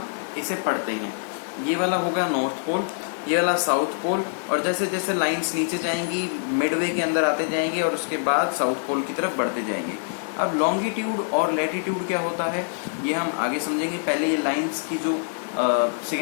इसे पढ़ते हैं. ये वाला होगा नॉर्थ पोल, ये वाला साउथ पोल, और जैसे जैसे लाइंस नीचे जाएंगी मिडवे के अंदर आते जाएंगे और उसके बाद साउथ पोल की तरफ बढ़ते जाएंगे. अब लॉन्गिट्यूड और लैटिट्यूड क्या होता है ये हम आगे समझेंगे. पहले ये लाइंस की जो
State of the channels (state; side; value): silent; right; 60 dB below the other